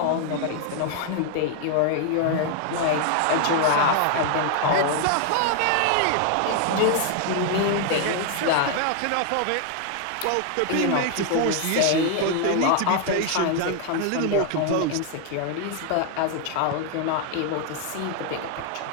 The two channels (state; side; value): different; both; correlation 0.00